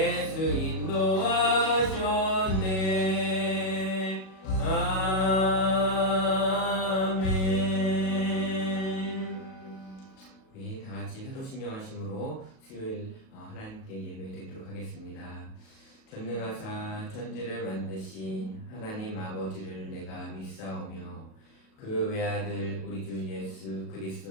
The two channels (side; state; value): right; late; 37 ms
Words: 인도하셨네. 아멘. 우리 다 같이 사도신경하심으로 수요일 하나님께 예배드리도록 하겠습니다. 전능하사 천지를 만드신 하나님 아버지를 내가 믿사오며 그 외아들 우리 주 예수